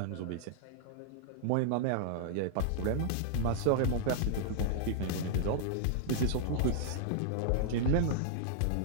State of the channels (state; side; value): different; both; correlation -0.01